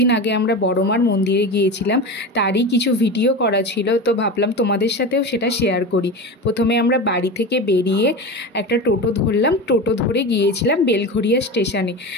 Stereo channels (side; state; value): both; normal; correlation 0.26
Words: আগে আমরা বড়মার মন্দিরে গিয়েছিলাম, তারই কিছু ভিডিও করা ছিল, তো ভাবলাম তোমাদের সাথেও সেটা শেয়ার করি। প্রথমে আমরা বাড়ি থেকে বেরিয়ে একটা টোটো ধরলাম, টোটো ধরে গিয়েছিলাম বেলঘরিয়া স্টেশনে।